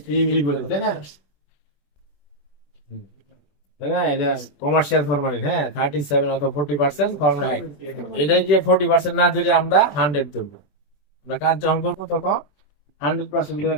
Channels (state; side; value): late; right; 21 ms